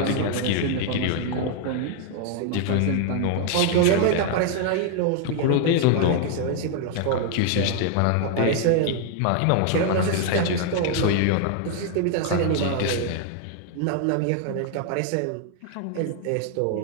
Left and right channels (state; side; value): different; both; correlation 0.00